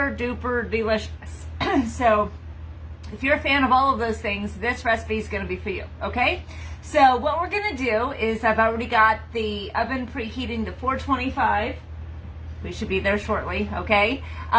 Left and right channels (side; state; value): both; identical; correlation 1.00